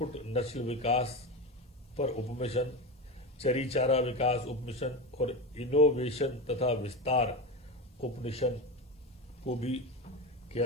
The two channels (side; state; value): both; normal; correlation 0.19